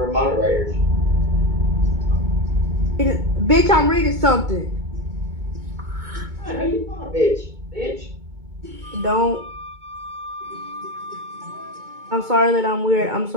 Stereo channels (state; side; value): late; left; 2.2 ms